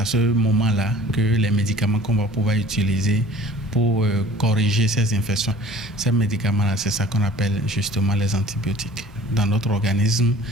ce moment-là que les médicaments qu'on va pouvoir utiliser pour corriger ces infections, ces médicaments-là, c'est ça qu'on appelle justement les antibiotiques. Dans notre organisme,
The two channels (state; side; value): normal; both; correlation 0.48